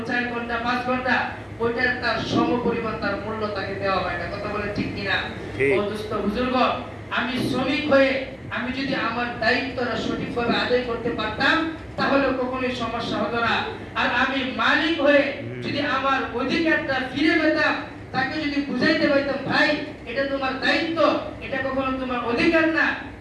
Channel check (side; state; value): both; identical; correlation 1.00